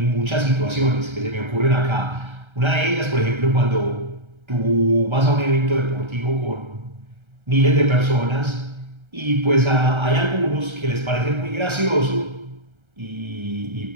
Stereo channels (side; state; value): left; late; 1.3 ms